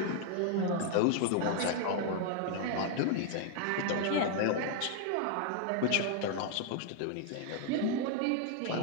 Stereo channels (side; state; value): both; different; correlation 0.00